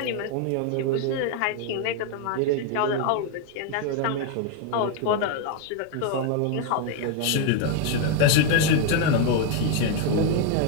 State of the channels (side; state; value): both; different; correlation 0.01